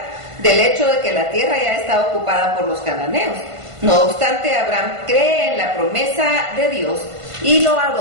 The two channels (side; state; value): left; late; 1.5 ms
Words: del hecho de que la tierra ya está ocupada por los cananeos. No obstante, Abraham cree en la promesa de Dios y lo